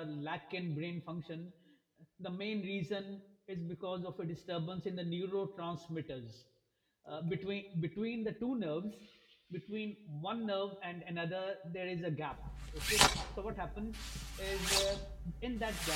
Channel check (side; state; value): both; identical; correlation 1.00